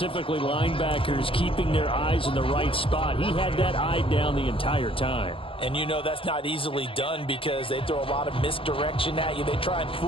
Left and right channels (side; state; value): right; late; 0.26 ms